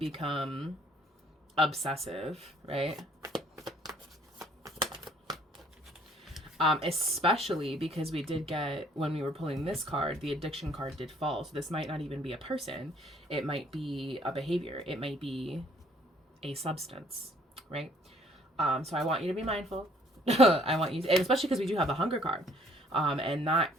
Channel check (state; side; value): normal; both; correlation 0.61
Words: obsessive, right? Especially because we did get, when we were pulling this card, the addiction card did fall. So this might not even be a person. It might be a behavior. It might be a substance, right? So I want you to be mindful. I want you to, and especially because we do have the hunger card. And that